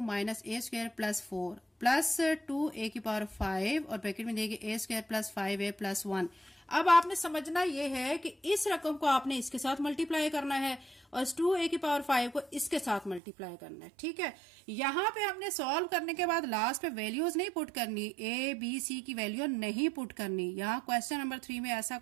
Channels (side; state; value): left; drops out; at 13.2 s